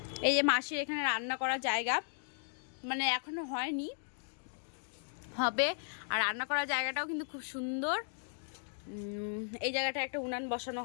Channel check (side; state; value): right; silent; digital silence